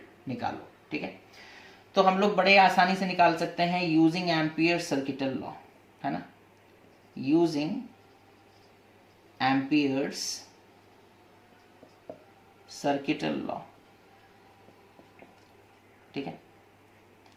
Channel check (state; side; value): identical; both; correlation 1.00